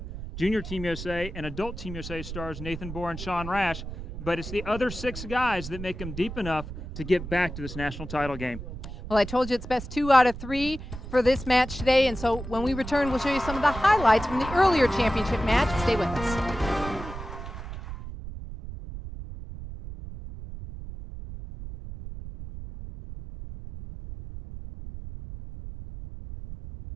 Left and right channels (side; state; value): right; noise; rumble, 10 dB below the sound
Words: Junior Team USA and Adult Team USA stars Nathan Bohr and Sean Rash, but it's the other 6 guys that make them deep enough to get back to this national title game. Well, I told you it's best 2 out of 3 for this match today, and so when we return, we'll show you some of the highlights from the earlier championship match. Stay with us.